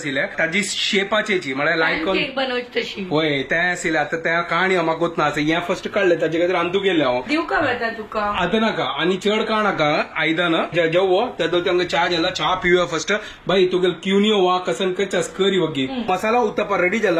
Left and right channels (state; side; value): identical; both; correlation 1.00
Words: ताजी शेपाचेची म्हळ्यार लायक बनवची तशी होय ते आशिल्ले आता त्या काणी म्हाका गोत ना हें फर्स्ट काडलें ताजे खातीर हांतू केलें हांव दिवका वेता तुका आता नाका आनी चड काळ नाका आयदन जेवो तेदो तांकां चा जाला चा पिवया फर्स्ट भाई तुगे क्युनियो वा कसन कचास करी वगी मसाला उत्तप्पा रेडी